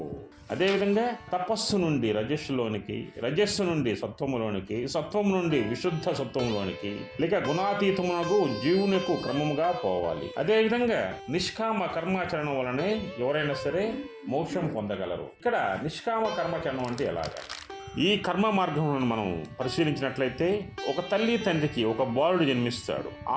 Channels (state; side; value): identical; both; correlation 1.00